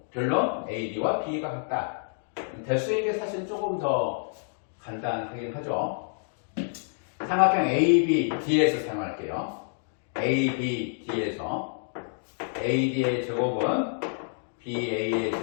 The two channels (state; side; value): silent; right; digital silence